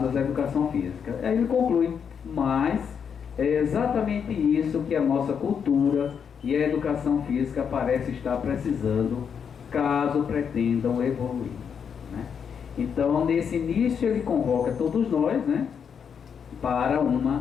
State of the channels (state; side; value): quieter; right; 7.1 dB